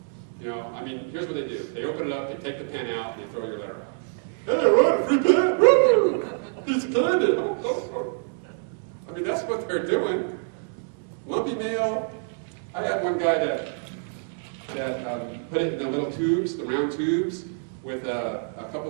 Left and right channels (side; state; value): left; silent; digital silence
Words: Here's what they do. They open it up, they take the pen out, and they throw your letter out. Hey, I wrote a free pen! Woo! Piece of candy! Oh. That's what they're doing. Lumpy mail. I had one guy that put it in the little tubes, the round tubes, with a